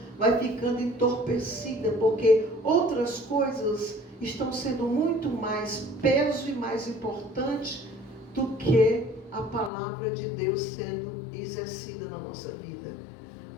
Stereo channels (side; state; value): right; drops out; at 9.7 s